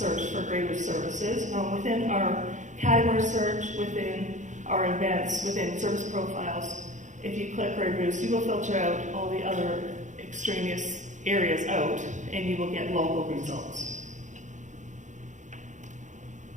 for Grey Bruce services, within our category search, within our events, within service profiles, if you click Grey Bruce, you will filter out all the other extraneous areas out, and you will get local results.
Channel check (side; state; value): left; late; 0.35 ms